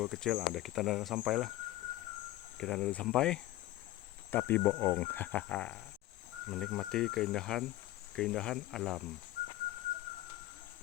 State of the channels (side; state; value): right; quieter; 16.3 dB